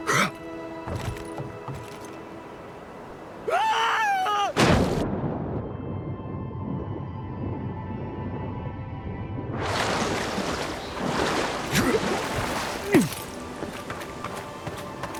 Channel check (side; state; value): both; identical; correlation 1.00